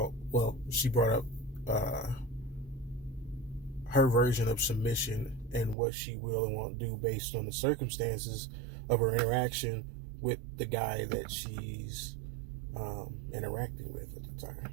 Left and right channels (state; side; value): drops out; left; at 5.8 s